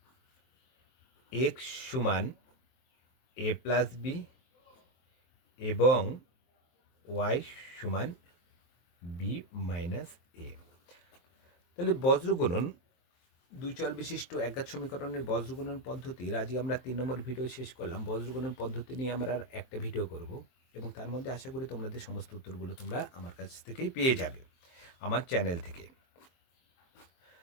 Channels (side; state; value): right; late; 23 ms